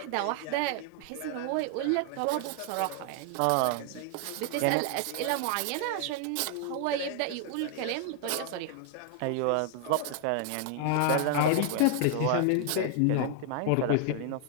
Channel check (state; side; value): different; both; correlation 0.00